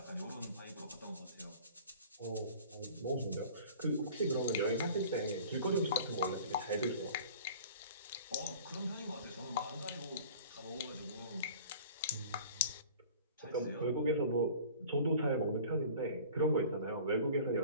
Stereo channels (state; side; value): inverted; both; correlation -0.45